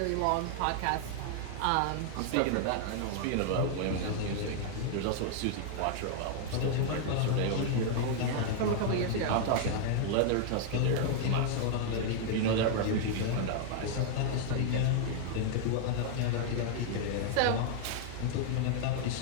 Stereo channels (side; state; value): both; different; correlation 0.00